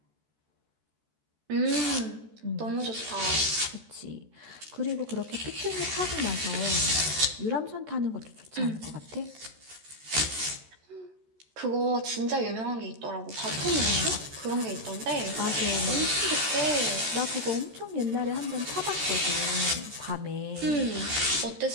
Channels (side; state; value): left; late; 13 ms